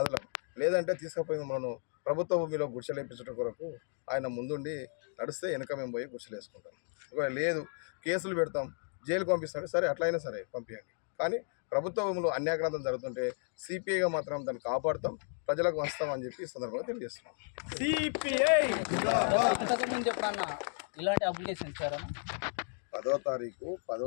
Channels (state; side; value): silent; right; 55 dB below the other